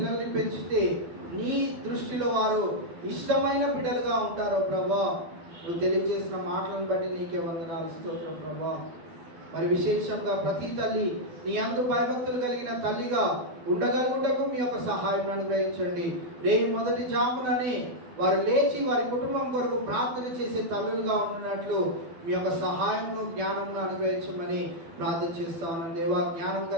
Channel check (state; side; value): late; left; 12 ms